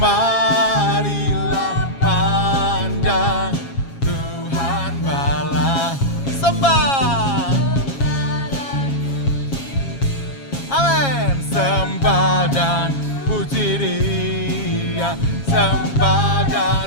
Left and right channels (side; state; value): right; late; 7.3 ms